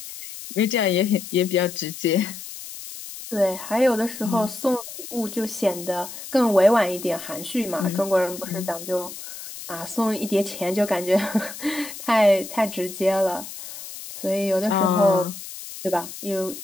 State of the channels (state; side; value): noise; left; hiss, 12 dB below the sound